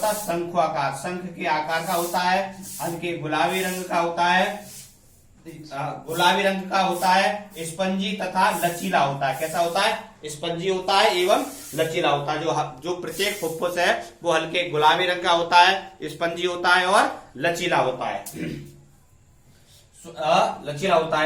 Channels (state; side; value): identical; both; correlation 1.00